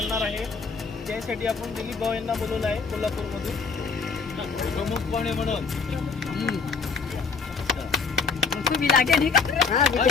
आहे. त्यासाठी आपण दिलीप भाऊ यांना बोलवलं आहे कोल्हापूरमधून प्रमुखपणे म्हणून. उसको भी लागे नहीं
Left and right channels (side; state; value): right; quieter; 5.0 dB